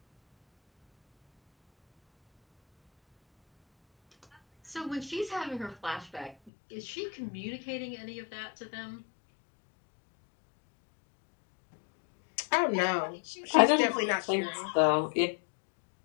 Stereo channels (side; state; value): right; drops out; at 6.5 s